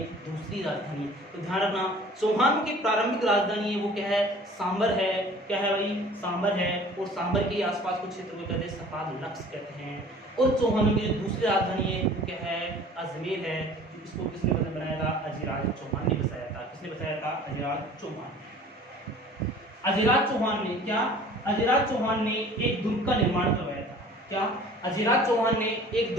दूसरी राजधानी। तो ध्यान रखना, चौहानों की प्रारंभिक राजधानी है वो क्या है? सांबर है। क्या है भाई? सांबर है। और सांबर के आसपास कुछ क्षेत्र को कहते हैं सपाद लक्ष्य कहते हैं। और चौहानों की जो दूसरी राजधानी है वो क्या है? अजमेर है। इसको किसने बनाया था? अजिराज चौहान ने बसाया था। किसने बसाया था? अजिराज चौहान। अजिराज चौहान ने क्या? अजिराज चौहान ने एक दुर्ग का निर्माण करवाया था। क्या? अजिराज चौहान ने एक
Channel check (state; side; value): normal; both; correlation 0.47